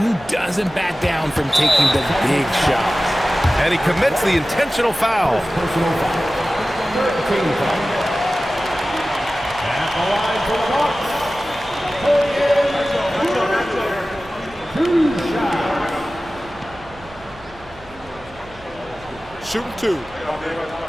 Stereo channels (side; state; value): right; noise; hum, 22 dB below the sound